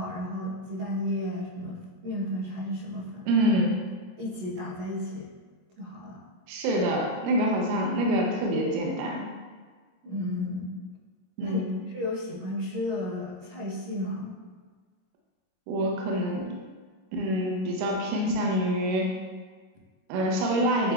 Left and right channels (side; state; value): left; late; 22 ms